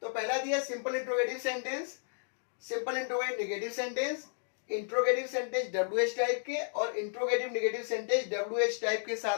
तो पहला दिया simple interrogative sentence, simple interrogative negative sentence, interrogative sentence WH type के और interrogative negative sentence WH type के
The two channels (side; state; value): right; silent; digital silence